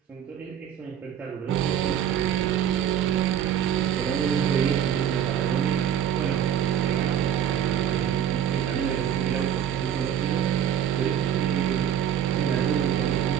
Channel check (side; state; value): left; quieter; 9.7 dB